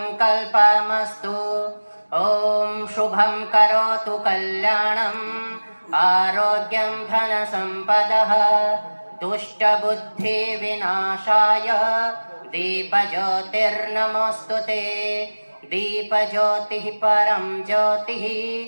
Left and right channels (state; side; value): inverted; both; correlation -1.00